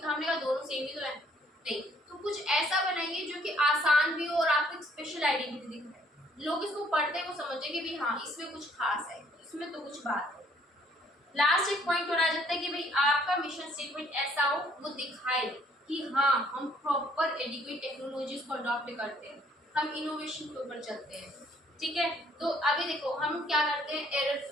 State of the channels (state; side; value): normal; both; correlation 0.63